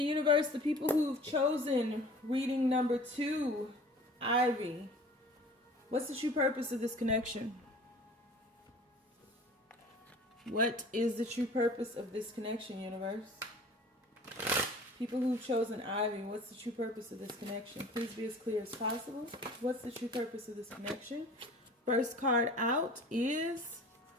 the people who've chosen reading number 2, Ivy, what's the true purpose of this connection? What is the true purpose of this connection, universe? People who've chosen Ivy, what's the true purpose of this connection? Please be as clear as possible. What's the true purpose of this connection? First card out is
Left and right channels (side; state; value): both; normal; correlation 0.45